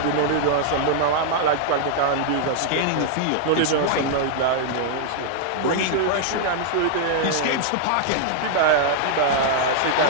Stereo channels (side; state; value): both; different; correlation -0.01